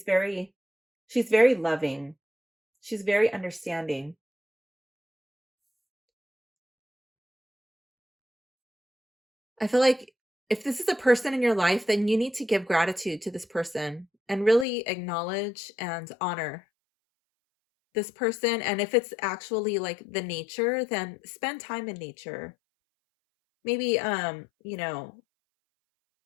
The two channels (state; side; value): drops out; right; at 14.7 s